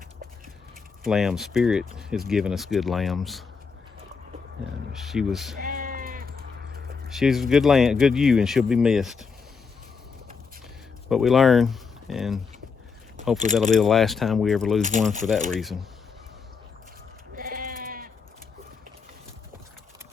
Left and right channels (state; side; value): quieter; right; 5.4 dB